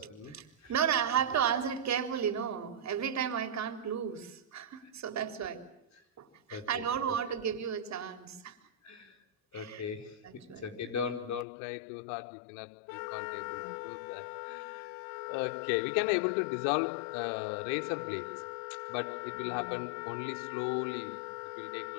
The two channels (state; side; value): drops out; right; at 11.5 s